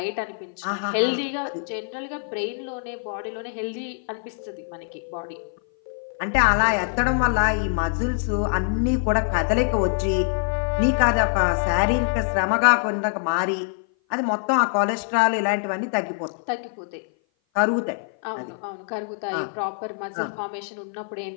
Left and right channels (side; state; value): right; silent; 57 dB below the other